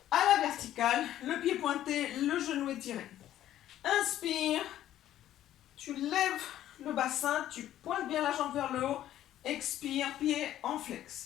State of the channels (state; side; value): quieter; right; 12.4 dB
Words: à la verticale, le pied pointé, le genou étiré. Inspire, tu lèves le bassin, tu pointes bien la jambe vers le haut expire, pied en flex.